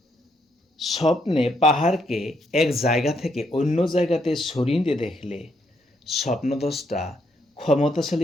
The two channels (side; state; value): both; normal; correlation 0.75